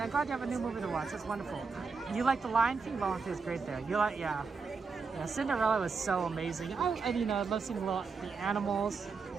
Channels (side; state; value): left; quieter; 4.9 dB